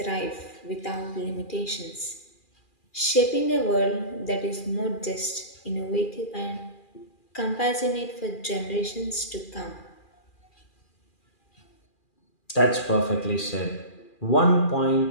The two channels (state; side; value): late; right; 2.4 ms